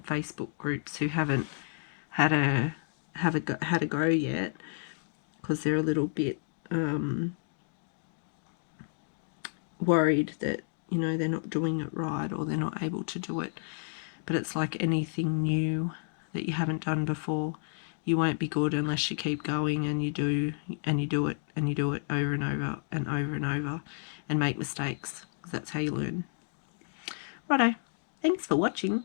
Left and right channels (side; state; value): right; silent; digital silence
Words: Facebook groups who haven't had a go yet, because they're a little bit worried that, you know, they're not doing it right or they're not able to do it. But it's like anything new that you haven't done before. You won't be good unless you keep going and you do it and you do it over and over and over and over and make mistakes, because that's how you learn. Righto, thanks for watching.